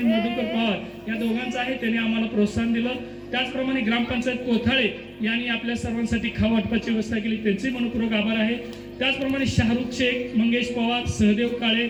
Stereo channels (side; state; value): both; identical; correlation 1.00